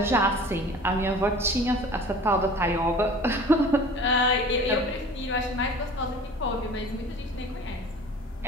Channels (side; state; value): both; normal; correlation 0.43